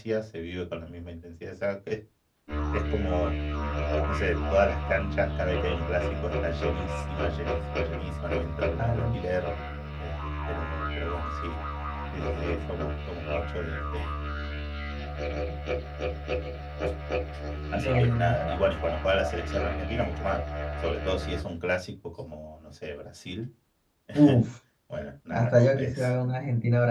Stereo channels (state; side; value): identical; both; correlation 1.00